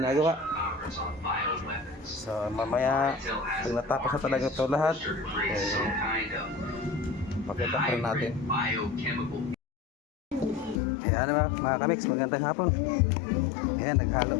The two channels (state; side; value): drops out; right; at 10.8 s